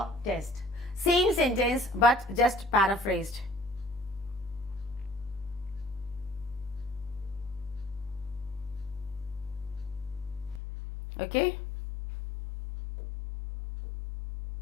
test. Same sentence but just paraphrased. Okay?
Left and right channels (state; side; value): drops out; right; at 10.6 s